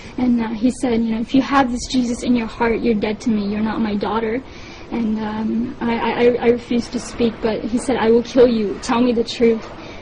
And he said, if you have this Jesus in your heart, you're dead to me. You're not my daughter. And I refused to speak, but he said, I will kill you. Tell me the truth.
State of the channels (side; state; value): both; identical; correlation 1.00